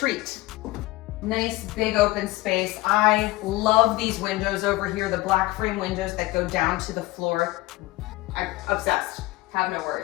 Nice big open space. I love these windows over here, the black frame windows that go down to the floor. I'm obsessed, have no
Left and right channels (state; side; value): quieter; right; 19.6 dB